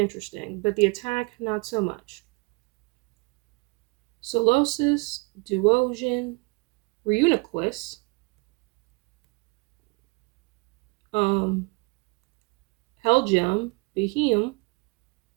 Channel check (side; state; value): left; quieter; 30.1 dB